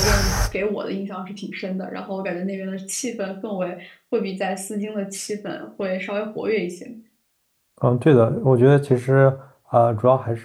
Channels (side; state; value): both; identical; correlation 1.00